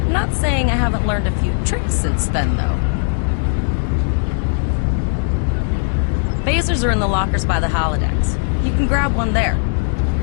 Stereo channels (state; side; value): silent; right; digital silence